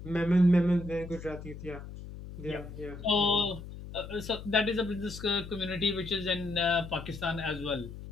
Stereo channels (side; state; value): left; noise; hum, 12 dB below the sound